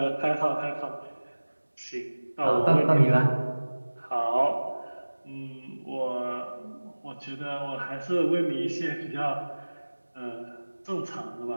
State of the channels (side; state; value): both; inverted; correlation -1.00